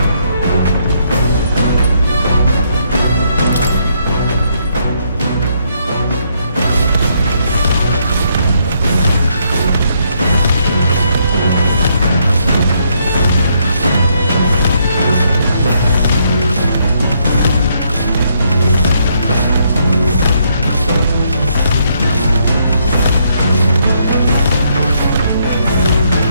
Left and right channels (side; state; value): both; inverted; correlation -0.73